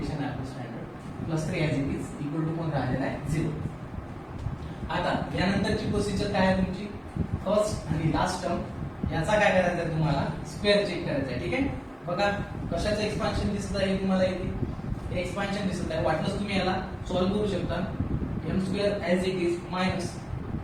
आहे आपलं standard. +3 as it is equal to कोण राहिलेला आहे? 0. यानंतरची प्रोसिजर काय आहे तुमची, फर्स्ट आणि लास्ट टर्म याचा काय करायचं आहे तुम्हाला, स्क्वेअर चेक करायचा आहे. ठीक आहे, बघा कशाचं एक्सपान्शन दिसत आहे तुम्हाला इथे, एक्सपान्शन दिसत आहे. वाटलंच तुम्ही याला सॉल्व्ह करू शकता. M square as it is minus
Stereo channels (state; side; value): identical; both; correlation 1.00